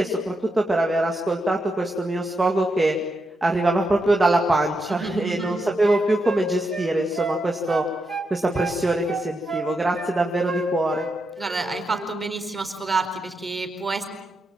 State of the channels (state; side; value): normal; both; correlation 0.84